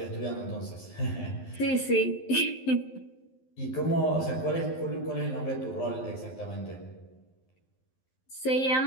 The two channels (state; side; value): late; right; 12 ms